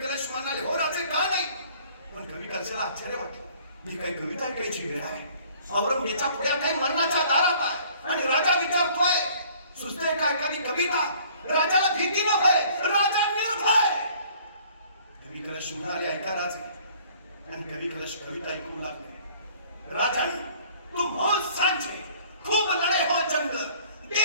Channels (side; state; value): both; inverted; correlation -0.55